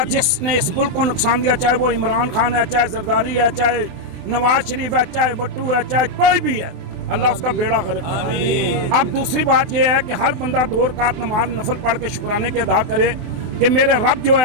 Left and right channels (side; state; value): left; late; 24 ms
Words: जिसने इस मुल्क को नुकसान दिया, चाहे वो इमरान खान है, चाहे जरदारी है, चाहे नवाज शरीफ है, चाहे वट्टू है, चाहे कोई भी है, अल्लाह उसका बेड़ा गर्क करे। अब दूसरी बात यह है कि हर बंदा 2 रकात नमाज नफल पढ़ के शुक्राने के अदा करे कि मेरे रब जो